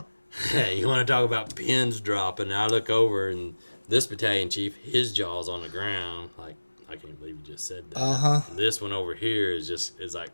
You want to talk about pins dropping? I look over and this battalion chief, his jaw's on the ground, like, I can't believe you just said that. This one over here is like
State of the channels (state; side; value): inverted; both; correlation -1.00